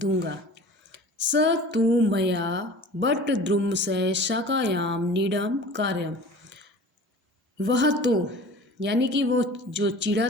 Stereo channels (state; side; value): normal; both; correlation 0.41